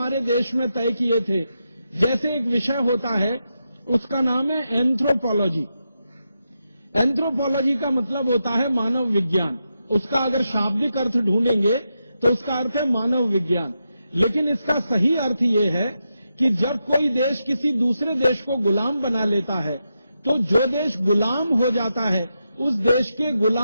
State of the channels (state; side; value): inverted; both; correlation -0.86